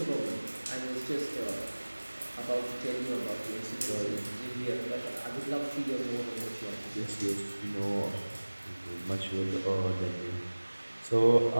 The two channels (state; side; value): inverted; both; correlation -1.00